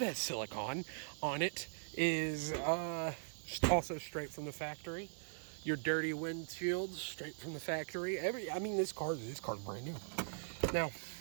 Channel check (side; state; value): left; silent; 51 dB below the other